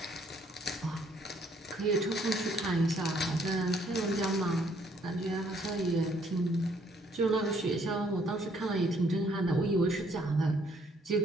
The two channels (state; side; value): normal; both; correlation 0.66